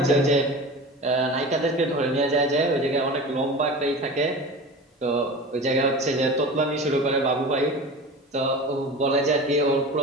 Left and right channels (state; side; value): normal; both; correlation 0.33